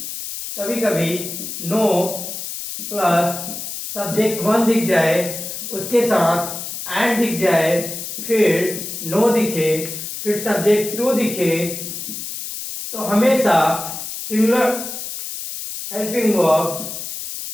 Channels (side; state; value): left; noise; hiss, 7 dB below the sound